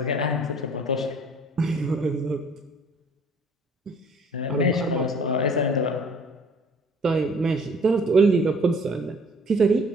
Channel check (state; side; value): normal; both; correlation 0.54